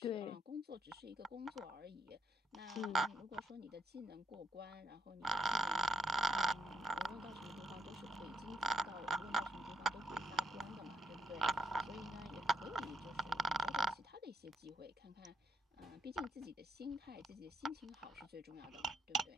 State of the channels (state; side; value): normal; both; correlation 0.73